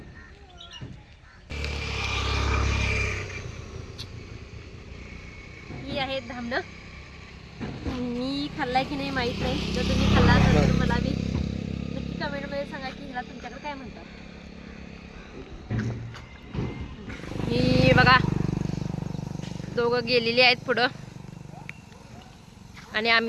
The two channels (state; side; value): identical; both; correlation 1.00